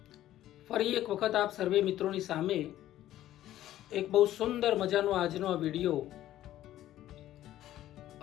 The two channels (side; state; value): right; quieter; 13.5 dB